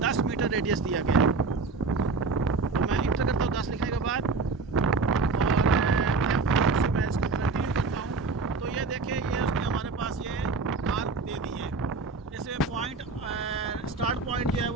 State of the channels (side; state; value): left; quieter; 4.1 dB